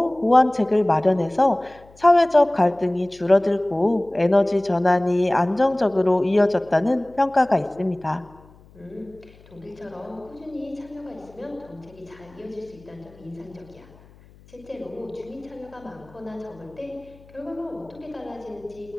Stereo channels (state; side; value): noise; left; hum, 26 dB below the sound